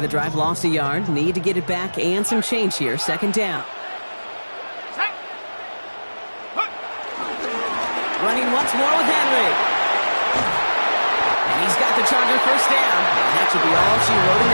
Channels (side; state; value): both; inverted; correlation -1.00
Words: the drive lost a yard. Need to get it back and some change here. 2nd down. Running once more with Henry. And he's got the Charger 1st down. And that should be all she wrote in